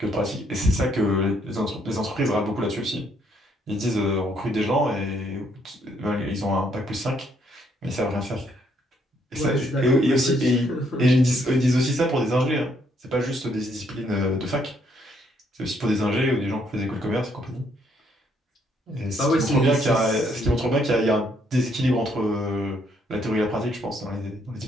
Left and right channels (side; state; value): both; normal; correlation 0.70